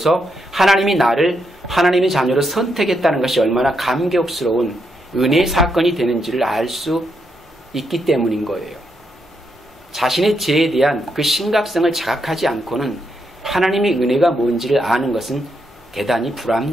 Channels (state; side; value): normal; both; correlation 0.80